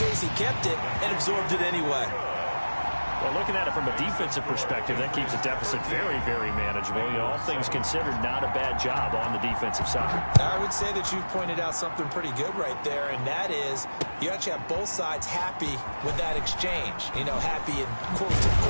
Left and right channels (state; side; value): inverted; both; correlation -1.00